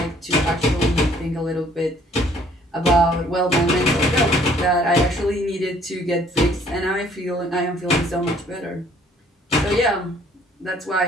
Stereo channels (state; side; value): normal; both; correlation 0.60